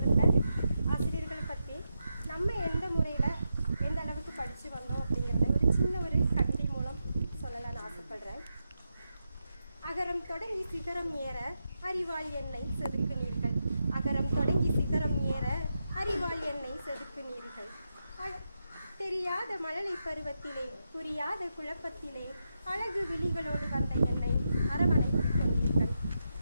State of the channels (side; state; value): both; inverted; correlation -0.86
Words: ஆசிரியர்களை பற்றி நம்ம எந்த முறையில் எந்த அளவுக்கு படித்து வந்தோம் அப்படிங்கிறத ஒரு சின்ன ஒரு கவிதை மூலம் சொல்லலாம்னு ஆசைப்படுறேன். அகரம் தொடங்கி சிகரம் ஏற அறிவால் என்னை செதுக்குனீர்கள். அகரம் தொடங்கி சிகரம் ஏற அறிவால் என்னை செதுக்குனீர்கள். தெரியாத மழலை பருவத்திலே புரியாத குழப்பத்திலே அழகு விழிகளோடு வந்த என்னை அரவணைத்துக் கொண்டீர்கள்.